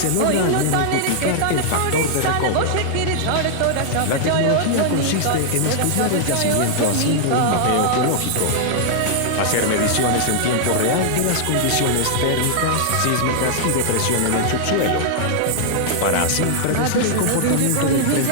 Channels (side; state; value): both; different; correlation -0.01